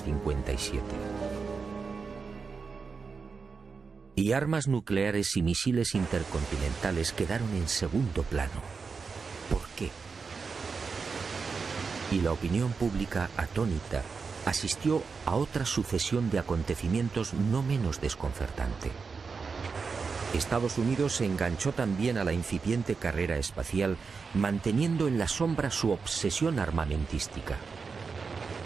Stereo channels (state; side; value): quieter; left; 5.0 dB